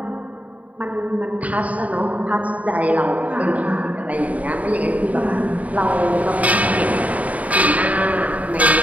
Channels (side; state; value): left; late; 0.070 ms